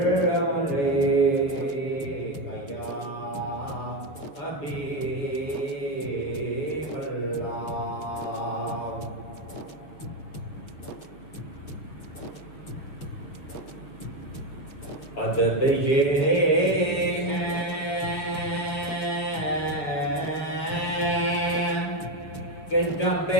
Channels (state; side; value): late; right; 6.8 ms